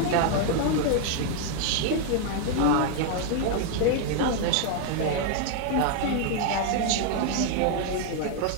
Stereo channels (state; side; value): different; both; correlation 0.00